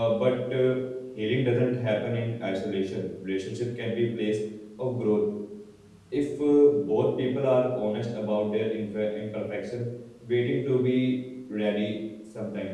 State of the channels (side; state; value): both; identical; correlation 1.00